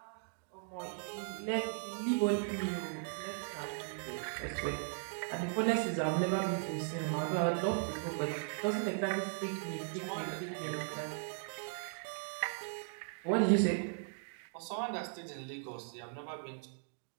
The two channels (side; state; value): left; silent; digital silence